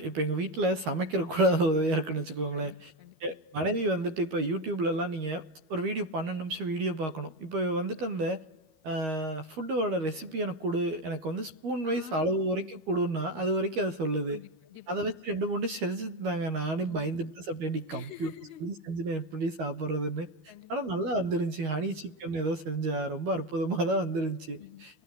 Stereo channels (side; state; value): left; late; 13 ms